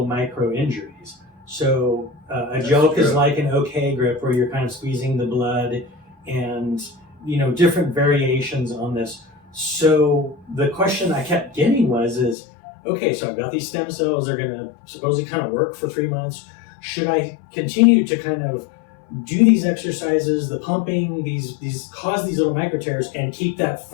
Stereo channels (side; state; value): right; drops out; at 12.4 s